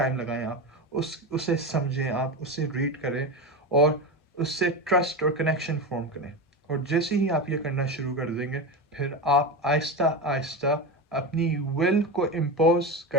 लगाएं। आप उसे समझें, आप उसे रीड करें और उससे ट्रस्ट और कनेक्शन फॉर्म करें। और जैसे ही आप ये करना शुरू कर देंगे, फिर आप आहिस्ता आहिस्ता अपनी विल को इम्पोज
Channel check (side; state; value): both; normal; correlation 0.20